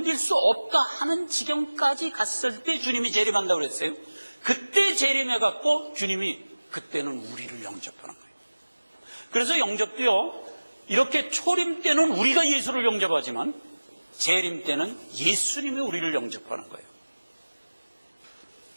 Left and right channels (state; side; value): inverted; both; correlation -1.00